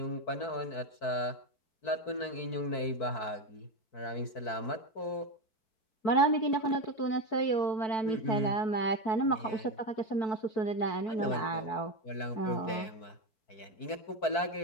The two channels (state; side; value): late; right; 4.6 ms